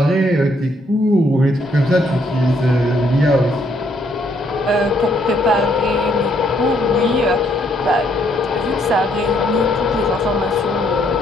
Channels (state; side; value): normal; both; correlation 0.70